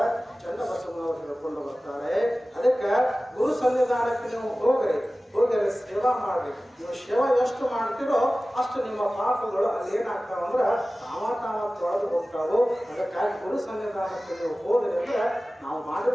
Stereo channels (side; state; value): both; normal; correlation 0.97